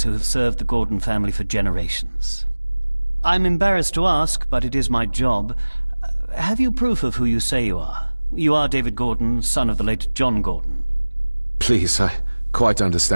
who have served the Gordon family for generations. I'm embarrassed to ask, but it is my job. Have you proof of who you say you are? You are David Gordon, son of the late John Gordon. Please, I quite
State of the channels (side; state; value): both; inverted; correlation -1.00